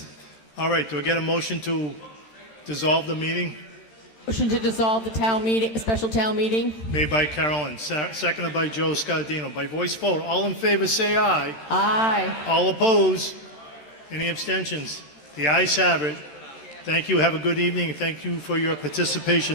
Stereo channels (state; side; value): late; right; 13 ms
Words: All right, do I get a motion to dissolve the meeting? Motion to dissolve the town meeting, special town meeting. Made by Carolyn, seconded by Joe Scardino. By voice vote, all in favor say aye. Aye. All opposed? Any abstentions? The ayes have it. Thank you. Have a good evening. Thank you for your